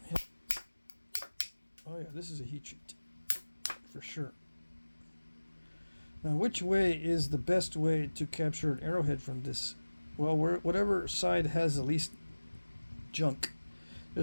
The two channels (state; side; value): inverted; both; correlation -1.00